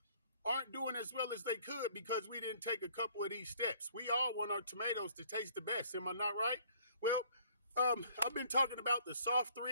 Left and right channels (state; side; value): inverted; both; correlation -0.58